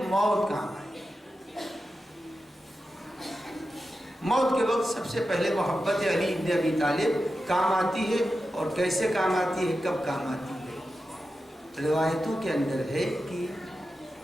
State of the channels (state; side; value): normal; both; correlation 0.91